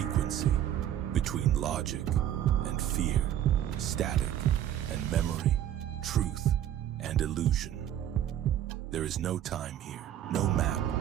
between logic and fear, static and memory, truth and illusion. There is no time here, no map,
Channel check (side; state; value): left; quieter; 11.0 dB